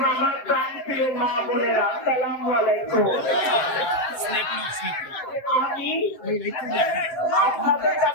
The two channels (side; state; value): right; late; 7.6 ms